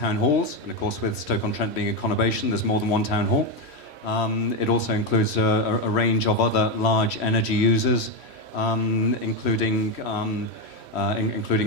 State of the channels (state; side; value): late; right; 3.1 ms